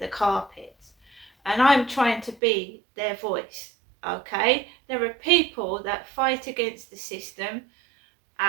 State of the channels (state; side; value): drops out; left; at 2.4 s